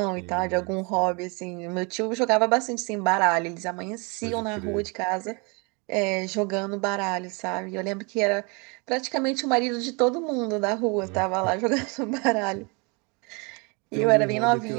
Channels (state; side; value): quieter; left; 31.1 dB